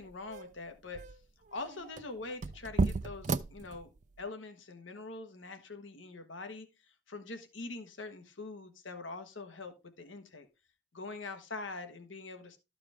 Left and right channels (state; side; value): normal; both; correlation 0.49